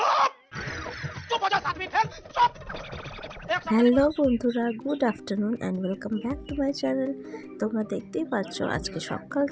चुप हो जा 7वीं फेल, चुप! হ্যালো বন্ধুরা, good afternoon and welcome back to my channel. তোমরা দেখতেই পাচ্ছ আজকে সকাল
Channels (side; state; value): both; identical; correlation 1.00